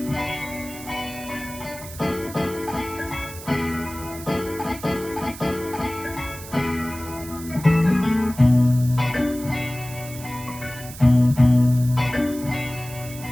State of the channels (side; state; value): right; noise; hiss, 14 dB below the sound